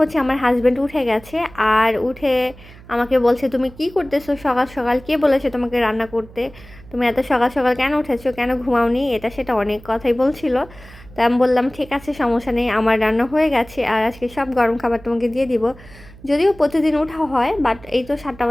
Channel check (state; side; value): noise; right; hum, 21 dB below the sound